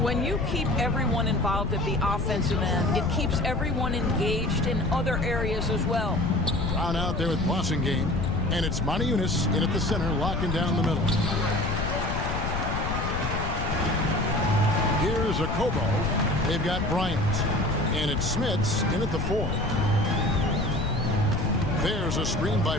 you keep everyone involved at the offensive end, it keeps everyone engaged in other areas as well. Brown out there with Blossingame, and it's Monaco in at the center, locking down the middle. Here's a Kobo. They've got Bryant, and it's Smits in at the 4. There's a screen by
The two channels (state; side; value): noise; left; rumble, 2 dB below the sound